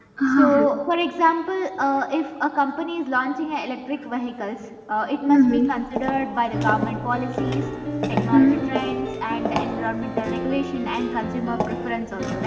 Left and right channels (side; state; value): both; identical; correlation 1.00